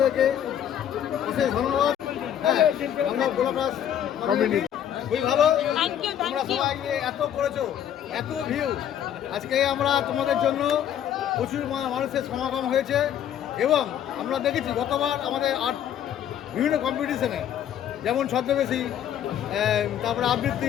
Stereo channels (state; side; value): quieter; right; 10.1 dB